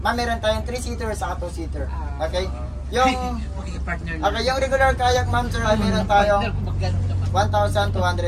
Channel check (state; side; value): identical; both; correlation 1.00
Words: meron tayong 3-seater sa 2-seater. Okay? Yung Partner okay, yung regular kayak, ma'am sir, ay meron tayong 1,200